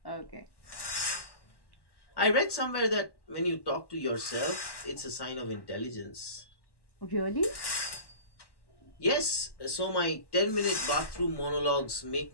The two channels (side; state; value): right; late; 1.1 ms